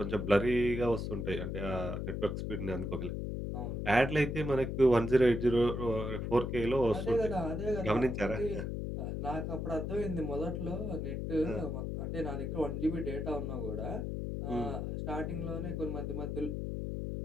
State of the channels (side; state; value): left; noise; hum, 3 dB below the sound